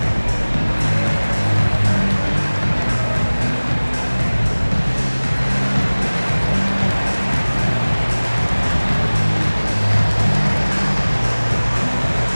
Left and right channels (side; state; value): both; inverted; correlation -1.00